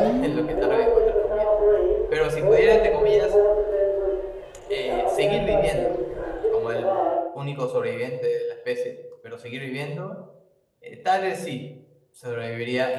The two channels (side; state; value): both; identical; correlation 1.00